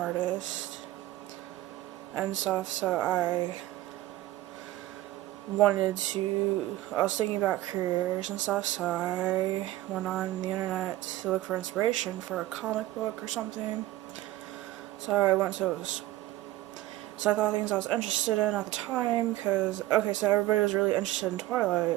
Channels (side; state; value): left; quieter; 16.0 dB